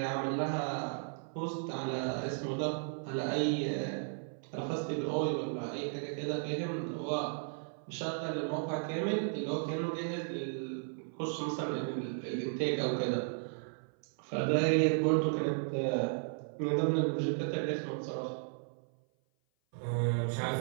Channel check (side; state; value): left; silent; 55 dB below the other